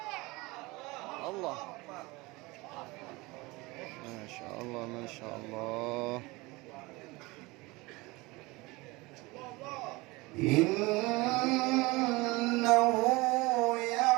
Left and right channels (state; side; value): quieter; left; 23.2 dB